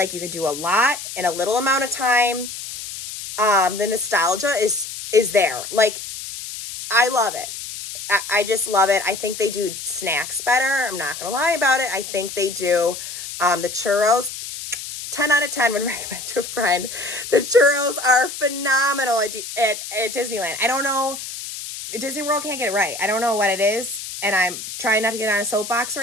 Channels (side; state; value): left; noise; hiss, 9 dB below the sound